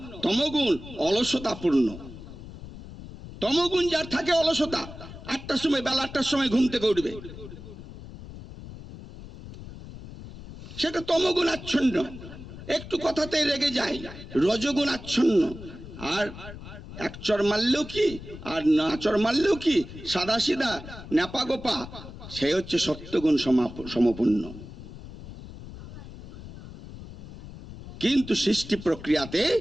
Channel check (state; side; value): noise; left; rumble, 14 dB below the sound